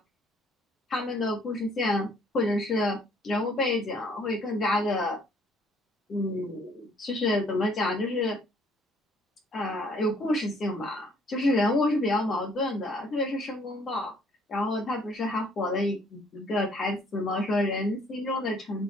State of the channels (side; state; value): both; normal; correlation 0.61